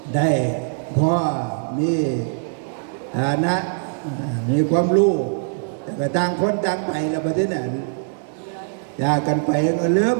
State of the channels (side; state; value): left; silent; 64 dB below the other